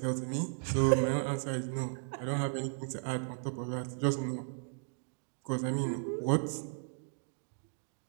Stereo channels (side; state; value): left; silent; digital silence